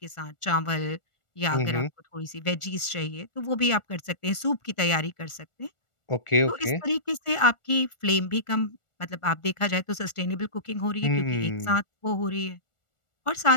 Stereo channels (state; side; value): late; right; 1.4 ms